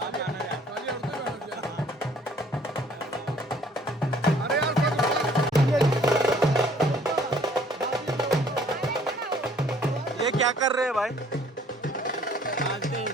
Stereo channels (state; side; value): normal; both; correlation 0.58